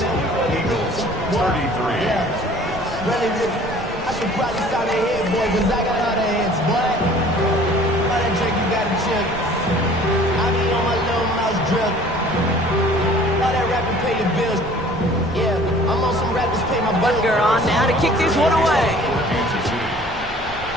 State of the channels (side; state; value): right; noise; rumble, 14 dB below the sound